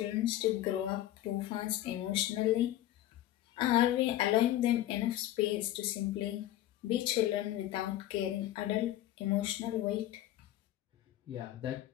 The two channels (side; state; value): right; quieter; 13.9 dB